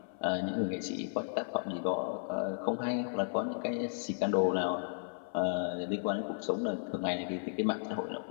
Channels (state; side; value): silent; right; 55 dB below the other